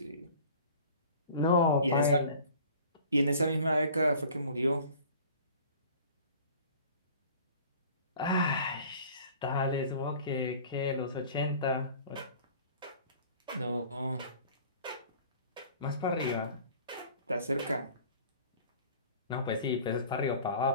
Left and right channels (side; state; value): both; inverted; correlation -0.46